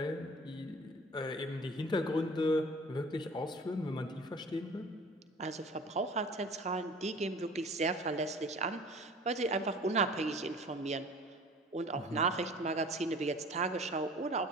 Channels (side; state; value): both; normal; correlation 0.45